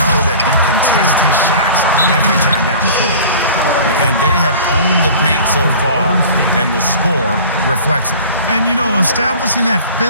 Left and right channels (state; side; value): inverted; both; correlation -0.42